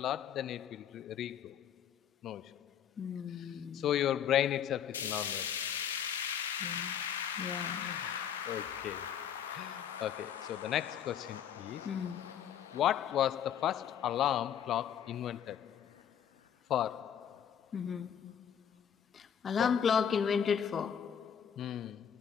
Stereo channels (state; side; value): quieter; right; 8.9 dB